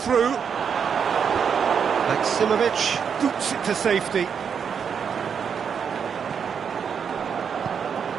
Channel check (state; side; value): quieter; left; 7.0 dB